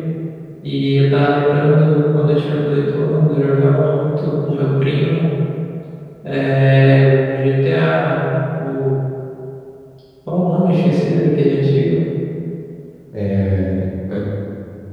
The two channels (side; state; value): both; identical; correlation 1.00